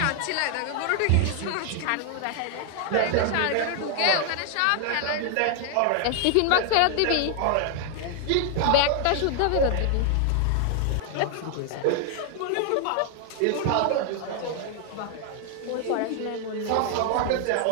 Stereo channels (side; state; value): both; different; correlation 0.00